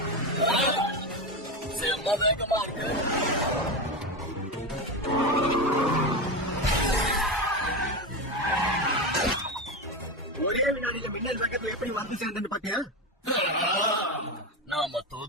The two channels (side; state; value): both; normal; correlation 0.17